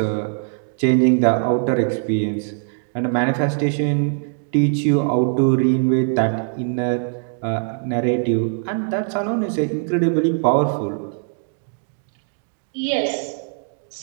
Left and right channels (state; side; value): silent; left; 59 dB below the other